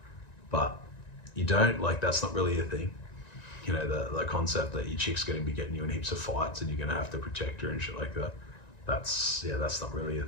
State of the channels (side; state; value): right; late; 1.9 ms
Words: But you don't, like, that's not really a thing. You know, the concept that your chick's going to be getting you in heaps of fights and you're going to have to protect her and shit like that. That's not really a